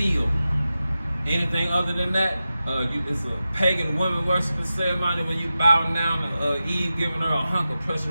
Anything other than that, it's a pagan woman worshiping ceremony when you bow down to Eve, giving her a hunk of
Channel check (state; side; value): inverted; both; correlation -0.93